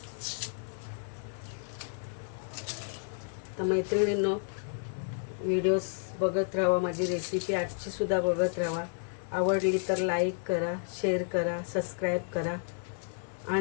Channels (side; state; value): right; silent; 57 dB below the other